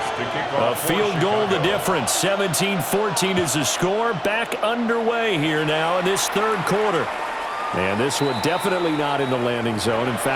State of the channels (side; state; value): both; identical; correlation 1.00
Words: A field goal the difference. 17-14 is the score. Back underway here now in this 3rd quarter. And this one definitely not in the landing zone. In